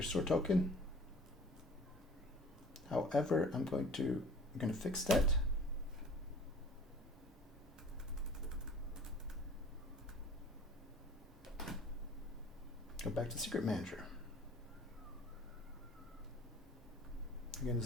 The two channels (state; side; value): normal; both; correlation 0.47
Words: store token. However, I'm going to fix that. Go back to Secret Manager. Again,